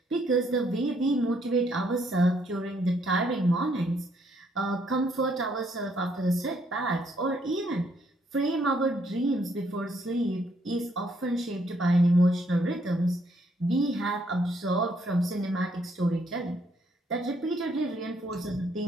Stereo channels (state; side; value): normal; both; correlation 0.70